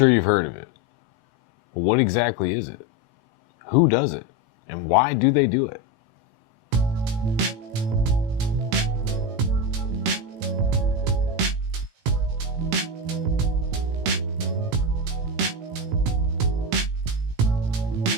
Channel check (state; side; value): late; left; 18 ms